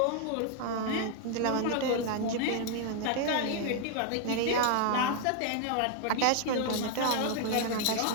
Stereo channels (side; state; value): both; different; correlation 0.00